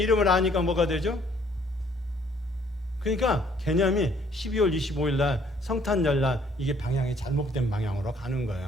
아니까 뭐가 되죠? 그러니까 개념이 12월 25일 날 성탄절 날 이게 방향이 잘못된 방향으로 가는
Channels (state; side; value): normal; both; correlation 0.62